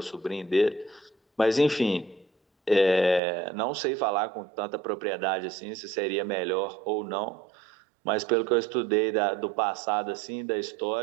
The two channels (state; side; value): drops out; left; at 3.2 s